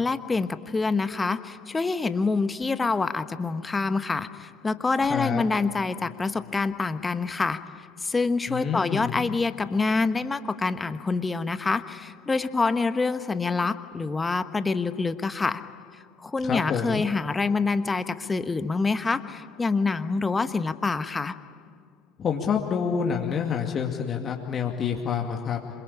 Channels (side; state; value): right; quieter; 4.0 dB